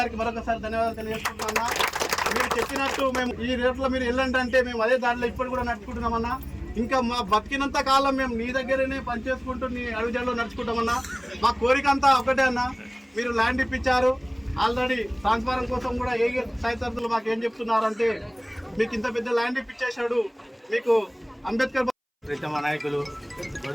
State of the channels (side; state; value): both; identical; correlation 1.00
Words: మరొకసారి ధన్యవాదాలు తెలియజేస్తున్నామన్నా. మీరు చెప్పినట్టు మేము ఈ రేట్లో మీరు వెళ్ళండి అంటే మేము అదే దారిలో ఇప్పుడు కూడా నడుచుకుంటున్నామన్నా. ఇంకా మా బతికినంత కాలం మేము నీ దగ్గరనే పనిచేసుకుంటూ నీ అడుగుజాడలో నడుచుకుంటామన్నా. మా కోరిక అంతా ఒకటే అన్న, మీరు ల్యాండ్ ఇప్పించారు ఆల్రెడీ. ట్రాన్స్ఫారం కోసం కూడా ఏ సాయతరులు మాకు ఏం చెప్తున్నారంటే మీకు ఇంత పెద్ద ల్యాండ్ ఇప్పించేశాడు, మీకు అంబేద్కర్ ప్రీతమ నాయకులు